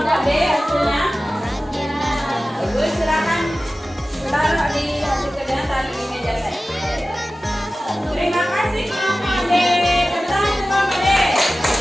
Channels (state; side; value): normal; both; correlation 0.96